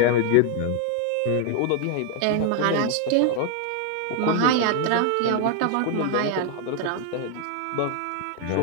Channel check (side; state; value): both; different; correlation 0.00